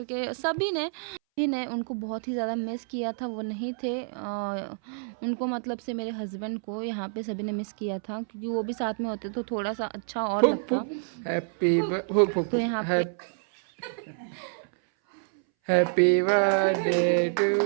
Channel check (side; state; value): left; silent; 59 dB below the other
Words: सभी ने उनको बहुत ही ज़्यादा मिस किया था, वो नहीं थे। उनको मतलब से मेरे हस्बैंड को यहाँ पे सभी ने मिस किया था, क्योंकि वो भी साथ में होते तो थोड़ा सा अच्छा और लगता। तो यहाँ पे happy birthday to